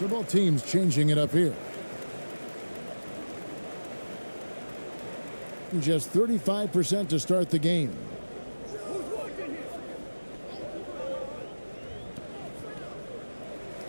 both teams changing it up here. Just 35% to start the game.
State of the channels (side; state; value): both; inverted; correlation -1.00